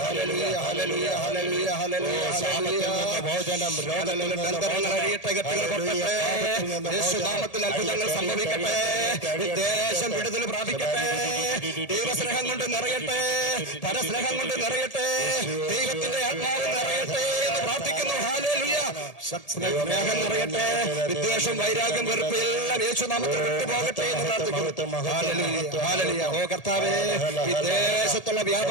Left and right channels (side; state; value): right; late; 1.8 ms